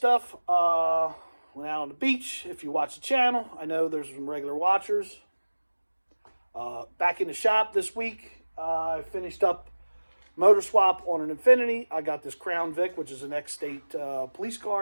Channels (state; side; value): inverted; both; correlation -1.00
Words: Went out on the beach. If you watch the channel, I know there's some regular watchers. Back in the shop this week, I finished up motor swap on an Infiniti. I got this Crown Vic, which is an ex-state police